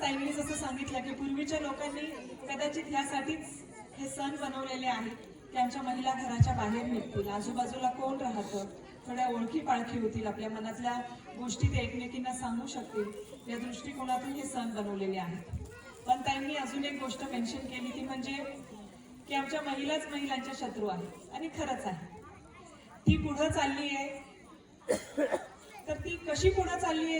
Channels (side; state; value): both; identical; correlation 1.00